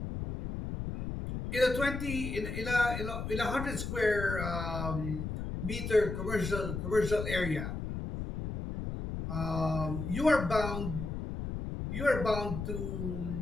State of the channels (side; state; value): left; noise; rumble, 5 dB below the sound